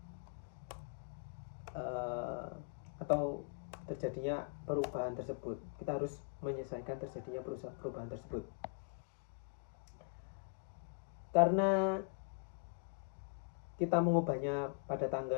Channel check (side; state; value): right; quieter; 38.6 dB